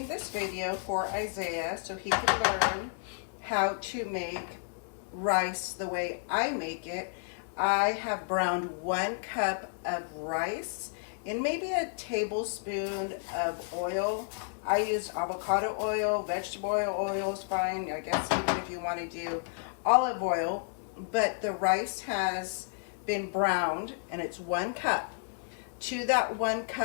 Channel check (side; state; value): right; silent; digital silence